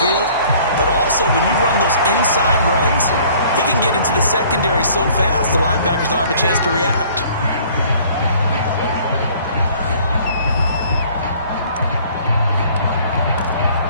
but also when you run those inside runs, he can get into the secondary so fast the linebackers don't have a chance to react.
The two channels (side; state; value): both; inverted; correlation -0.54